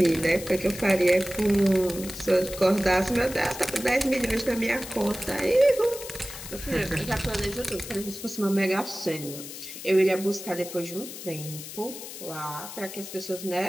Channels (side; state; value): left; noise; hiss, 11 dB below the sound